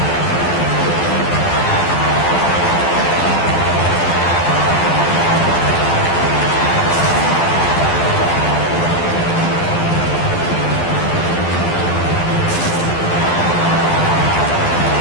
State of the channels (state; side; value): late; right; 12 ms